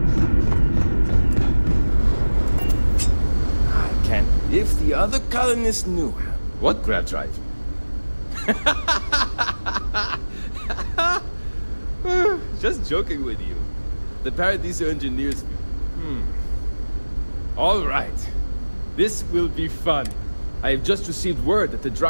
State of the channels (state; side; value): inverted; both; correlation -1.00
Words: other colonists knew. What grab drive? Just joking with you. The Paradiso engineers... All right. This will be fun. I have just received word that the